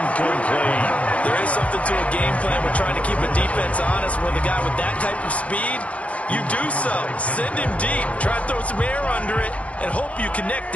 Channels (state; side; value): late; right; 0.064 ms